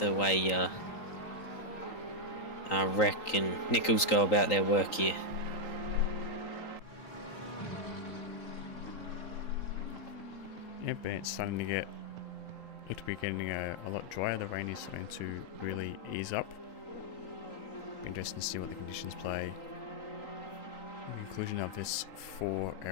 way Wreck and Nichols go about their work here. Yep, and it's starting to look to be getting a lot drier. The rain is starting to really ease up. Be interesting to see what the conditions play. The conclusion of this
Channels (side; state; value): right; late; 3.8 ms